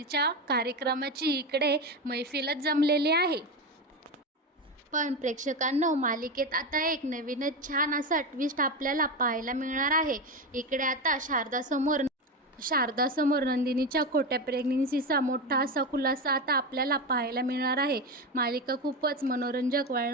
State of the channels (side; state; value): both; normal; correlation 0.17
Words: कार्यक्रमाची इकडे मैफिलच जमलेली आहे. पण प्रेक्षकांनो, मालिकेत आता एक नवीनच छान असा ट्विस्ट आपल्याला पाहायला मिळणार आहे. इकडे आता शारदासमोर नंदिनीच्या खोट्या प्रेग्नेन्सीचा मोठा असा खुलासा आता आपल्याला पाहायला मिळणार आहे. मालिका खूपच मनोरंजक